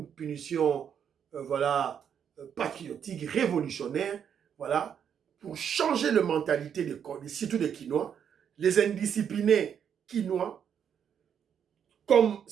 punition, voilà, patriotique, révolutionnaire, voilà, pour changer la mentalité surtout des Quinois, les indisciplinés Quinois, comme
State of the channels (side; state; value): left; quieter; 8.2 dB